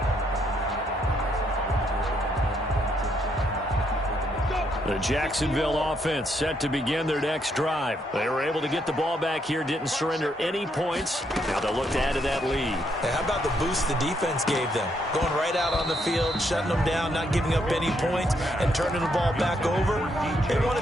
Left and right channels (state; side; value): normal; both; correlation 0.74